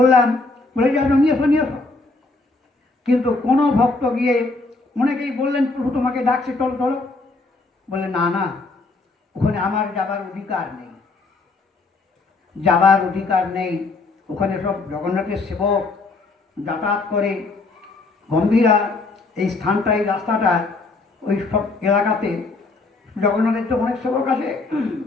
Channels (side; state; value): right; quieter; 3.5 dB